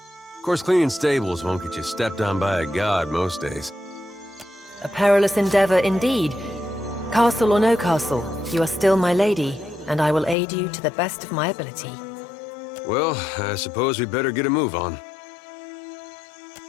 Of course, cleaning stables won't get you stepped on by a god most days. A perilous endeavor indeed. Castle or no castle, you are still my lady, and I will aid you to the best of my ability. Well, I suppose we better get a move on.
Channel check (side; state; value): right; drops out; at 10.4 s